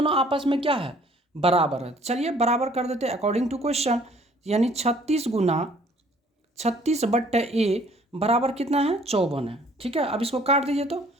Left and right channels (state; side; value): normal; both; correlation 0.58